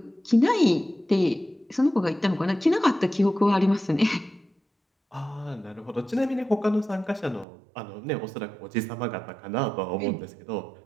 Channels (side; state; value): left; drops out; at 7.5 s